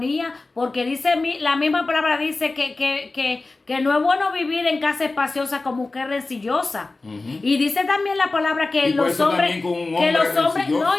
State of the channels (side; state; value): right; quieter; 3.4 dB